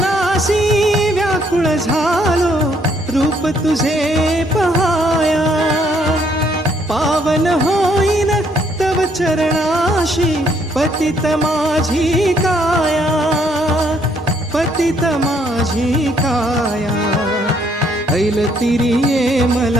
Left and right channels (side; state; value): both; normal; correlation 0.68